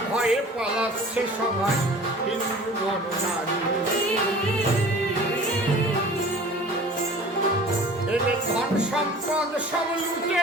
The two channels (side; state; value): both; normal; correlation 0.44